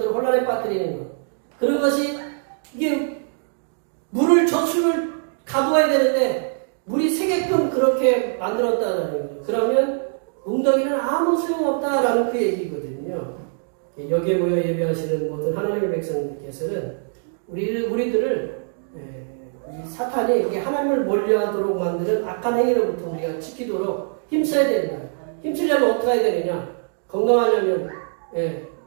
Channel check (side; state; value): left; silent; digital silence